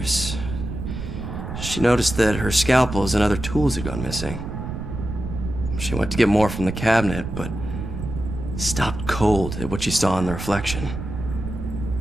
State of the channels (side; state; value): right; noise; rumble, 7 dB below the sound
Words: She noticed that her scalpels and other tools had gone missing. She went to get more from the cabinet, but stopped cold at what she saw in the reflection.